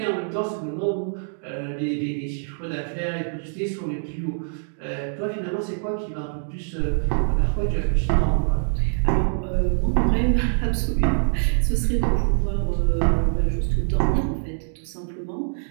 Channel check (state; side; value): silent; left; digital silence